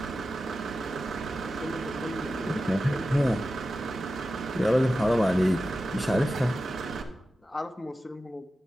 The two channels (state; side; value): normal; both; correlation 0.93